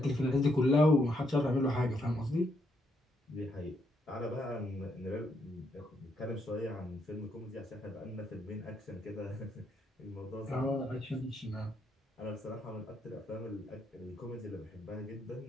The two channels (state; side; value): normal; both; correlation 0.76